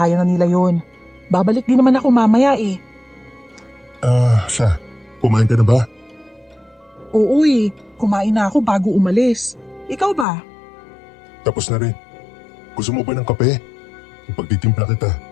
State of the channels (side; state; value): right; drops out; at 10.2 s